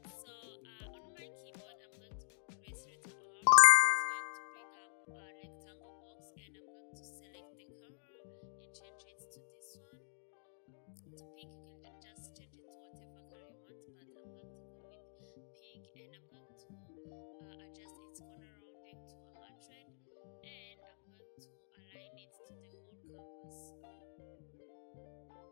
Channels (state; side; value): silent; right; digital silence